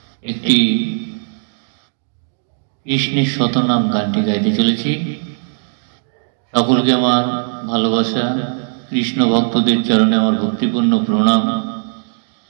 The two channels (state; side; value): silent; left; digital silence